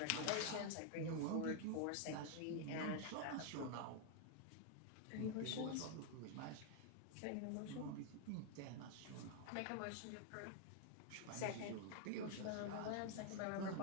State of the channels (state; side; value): different; both; correlation 0.00